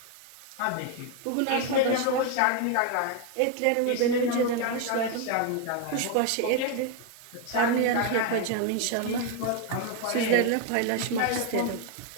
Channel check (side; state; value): both; different; correlation 0.01